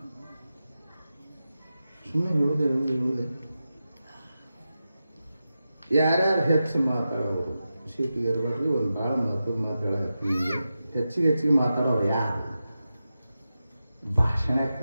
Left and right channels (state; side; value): inverted; both; correlation -0.92